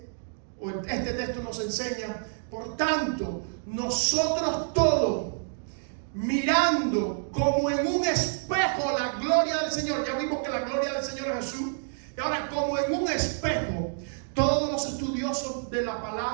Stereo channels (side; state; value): left; silent; digital silence